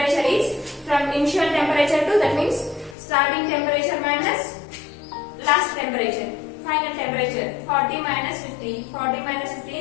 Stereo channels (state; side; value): drops out; right; at 3.0 s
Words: is from initial temperature to, that means starting temperature minus and temperature. 40 minus 50. 40 minus 50